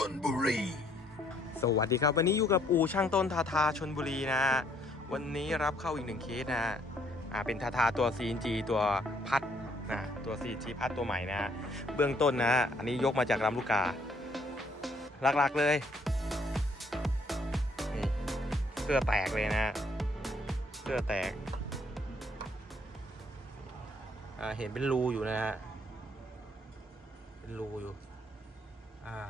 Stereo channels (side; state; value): both; normal; correlation 0.66